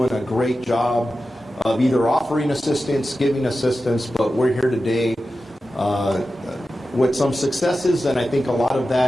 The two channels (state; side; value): normal; both; correlation 0.93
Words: a great job of either offering assistance, giving assistance, but we're here today with some successes, and I think a lot of